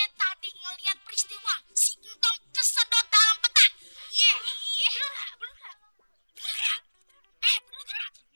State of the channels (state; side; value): inverted; both; correlation -1.00